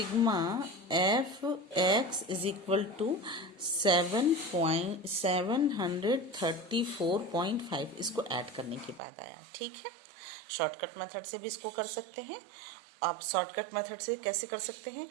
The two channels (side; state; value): left; drops out; at 9.0 s